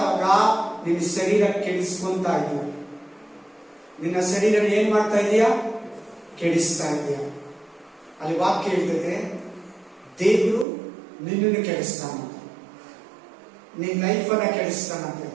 ನಿನ್ನ ಶರೀರ ಕೆಡಿಸ್ಕೊಂತ ಇದೀಯ. ನಿನ್ನ ಶರೀರ ಏನ್ ಮಾಡ್ತಾ ಇದೀಯ? ಕೆಡಿಸ್ತಾ ಇದೀಯ. ಅಲ್ಲಿ ವಾಕ್ಯ ಹೇಳ್ತದೆ, ದೇವರು ನಿನ್ನನ್ನು ಕೆಡಿಸ್ತಾನಂತೆ, ನಿನ್ನ ಲೈಫನ್ನ ಕೆಡಿಸ್ತಾನಂತೆ,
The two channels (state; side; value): drops out; left; at 10.7 s